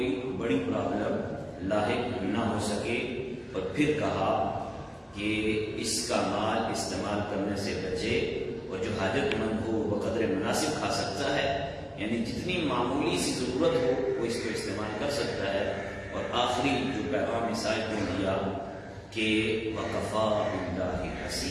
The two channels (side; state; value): both; identical; correlation 1.00